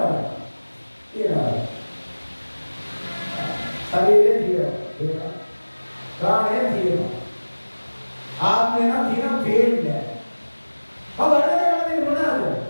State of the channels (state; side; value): inverted; both; correlation -1.00